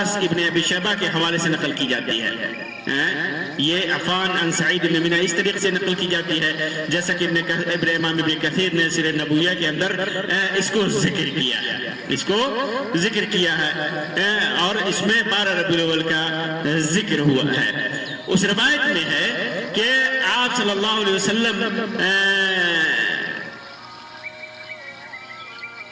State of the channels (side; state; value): both; identical; correlation 1.00